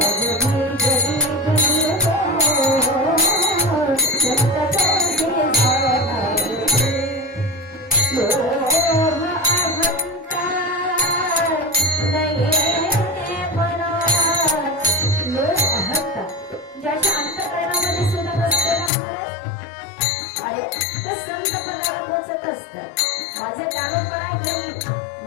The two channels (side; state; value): right; drops out; at 18.9 s